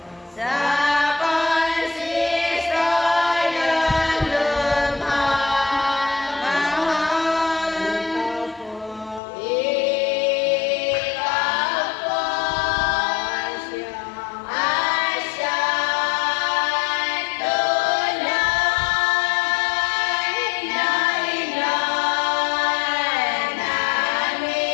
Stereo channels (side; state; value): right; drops out; at 9.2 s